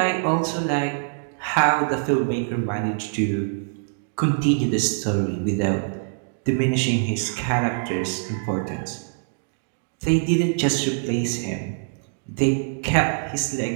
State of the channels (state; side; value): silent; left; digital silence